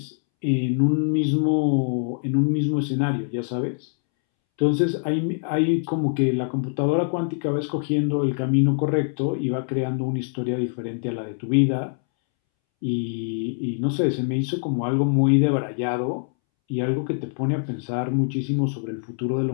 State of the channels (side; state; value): right; silent; 63 dB below the other